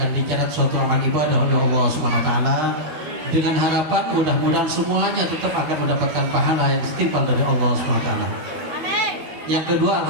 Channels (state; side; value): late; left; 13 ms